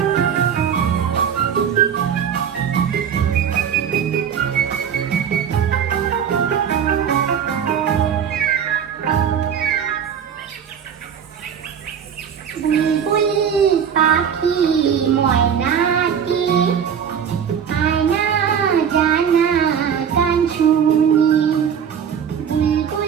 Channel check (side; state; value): left; quieter; 7.9 dB